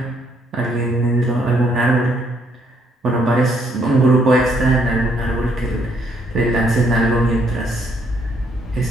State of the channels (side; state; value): both; normal; correlation 0.70